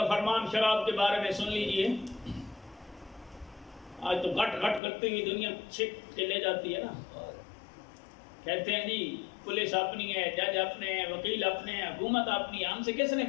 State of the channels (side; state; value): right; drops out; at 4.8 s